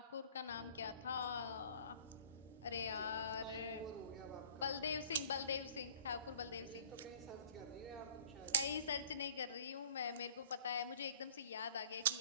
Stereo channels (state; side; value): inverted; both; correlation -0.51